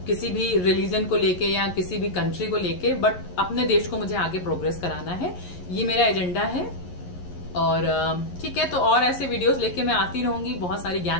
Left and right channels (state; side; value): late; right; 11 ms